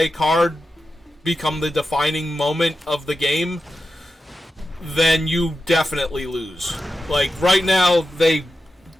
card become the defining moment of the game, then you definitely lose. Like, right now, they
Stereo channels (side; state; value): both; normal; correlation 0.91